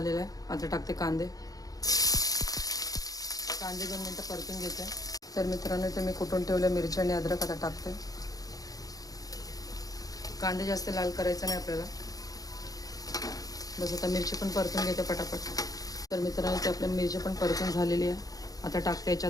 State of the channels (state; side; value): late; right; 0.18 ms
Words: आहे. आता टाकते कांदे. कांदे 2 मिनटं परतून घेते. तर मित्रांनो इथे मी कुटून ठेवले मिरची आणि अद्रक आता टाकते. कांदे जास्त लाल करायचं नाही आपल्याला. बस आता मिरची पण परतून घेते पटापट. तर मित्रांनो इथे आपल्या मिरची पण परतून झालेली आहे. आता टाकते